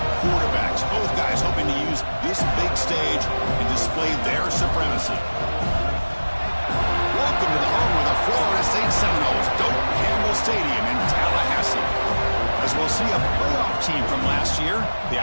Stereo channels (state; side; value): inverted; both; correlation -1.00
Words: quarterbacks. Both guys hoping to use this big stage and display their supremacy. Welcome to the home of the Florida State Seminoles, Doak Campbell Stadium in Tallahassee. As we'll see a playoff team from last year, the